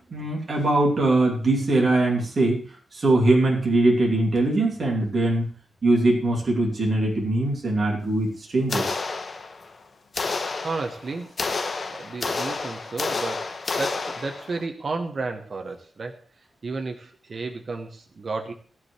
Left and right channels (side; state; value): both; normal; correlation 0.85